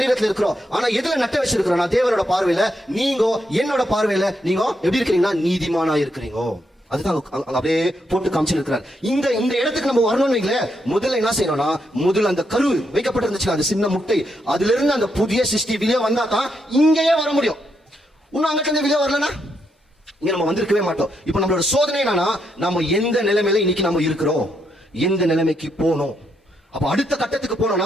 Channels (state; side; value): normal; both; correlation 0.79